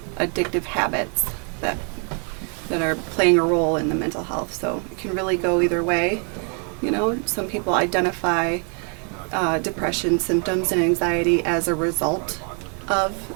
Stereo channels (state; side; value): quieter; left; 39.6 dB